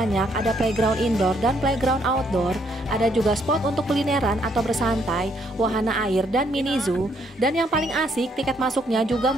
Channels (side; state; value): both; normal; correlation 0.70